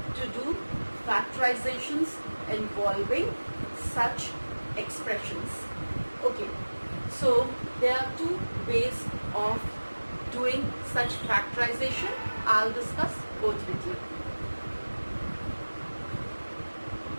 to do factorizations involving such expressions. Okay, so there are 2 ways of doing such factorization. I'll discuss both with you.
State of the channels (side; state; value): both; inverted; correlation -1.00